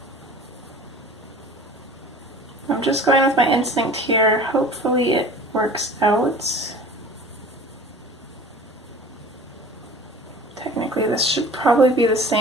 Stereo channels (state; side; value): normal; both; correlation 0.42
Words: I'm just going with my instinct here. Hopefully it works out. Technically this should probably be the